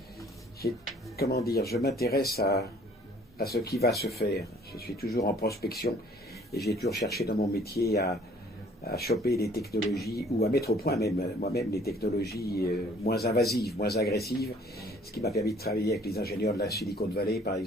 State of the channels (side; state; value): both; normal; correlation 0.56